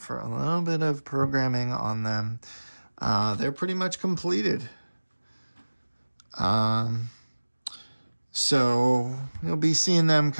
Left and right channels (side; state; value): both; inverted; correlation -1.00